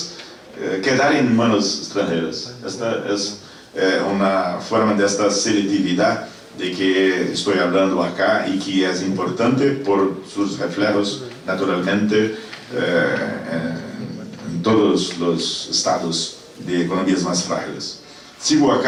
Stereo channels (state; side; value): identical; both; correlation 1.00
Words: quedar en manos extranjeras. Esta es una forma de esta selectividad de que estoy hablando acá y que es importante por sus reflejos naturalmente en todos los estados de economías más frágiles. Sigo